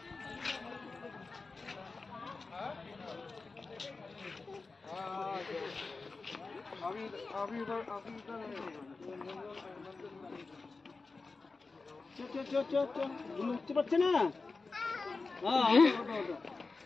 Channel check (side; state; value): right; quieter; 4.0 dB